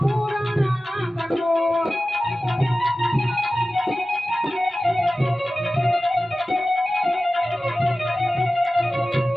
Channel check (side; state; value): both; normal; correlation 0.95